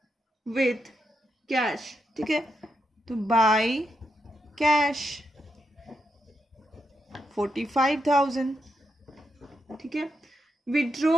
विथ कैश। ठीक है, तो बाय कैश 45,000। ठीक है,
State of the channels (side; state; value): both; normal; correlation 0.83